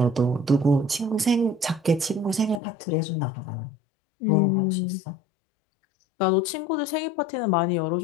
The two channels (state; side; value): drops out; right; at 2.6 s